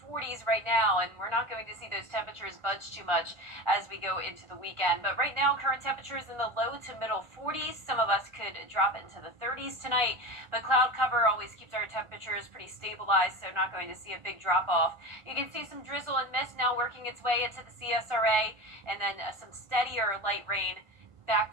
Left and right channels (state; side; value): late; left; 1.5 ms